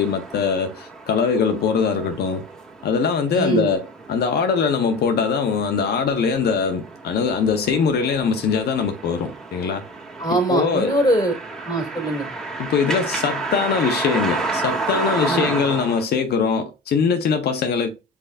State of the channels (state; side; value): quieter; right; 3.5 dB